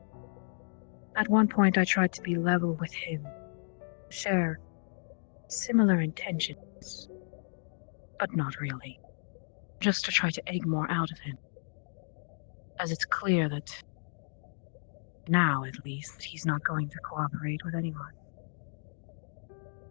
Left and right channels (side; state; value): right; silent; 56 dB below the other